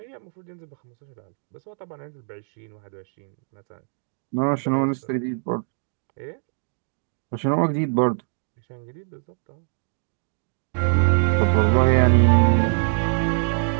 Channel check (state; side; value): silent; left; 63 dB below the other